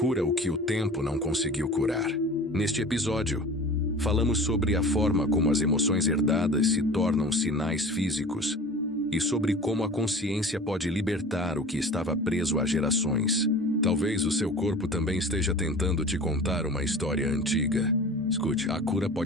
o que o tempo não conseguiu curar. Neste episódio, falamos sobre a forma como as emoções herdadas se tornam sinais físicos e sobre como a consciência pode libertar o que estava preso há gerações. Talvez o seu corpo também esteja tentando te contar uma história antiga. Escute, a cura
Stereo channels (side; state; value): both; normal; correlation 0.39